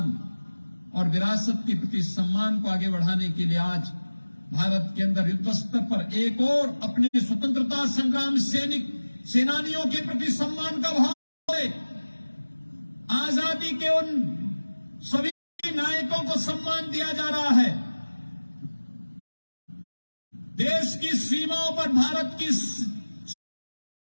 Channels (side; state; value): both; inverted; correlation -1.00